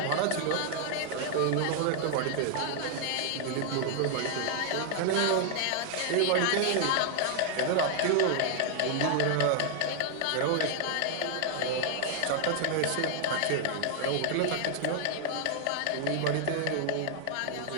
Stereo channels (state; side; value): different; both; correlation -0.01